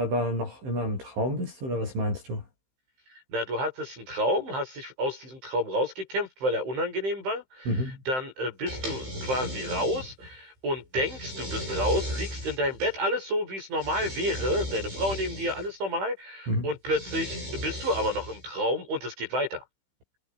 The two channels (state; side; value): late; left; 15 ms